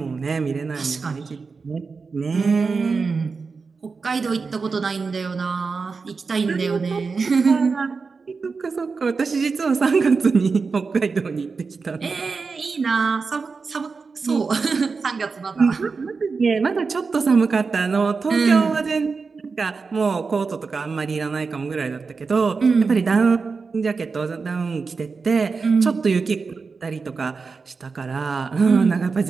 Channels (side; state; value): left; quieter; 4.7 dB